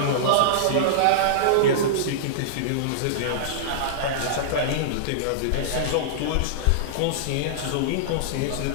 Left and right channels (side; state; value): both; different; correlation -0.02